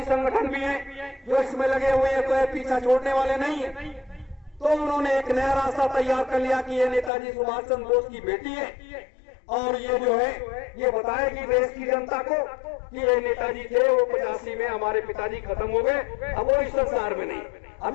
संगठन भी हैं जो इसमें लगे हुए हैं, कोई पीछा छोड़ने वाले नहीं है, तो उन्होंने एक नया रास्ता तैयार कर लिया कि ये नेताजी सुभाष चंद्र बोस की बेटी है और ये जो है ये बताएगी देश की जनता को कि ये नेताजी थे, वो 85 में हमारे पिताजी खत्म हो गए, अब वो इस संसार में नहीं।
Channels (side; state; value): right; drops out; at 7.1 s